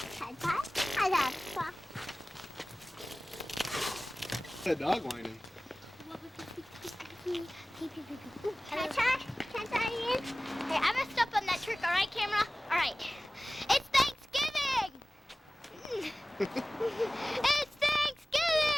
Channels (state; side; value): normal; both; correlation 0.98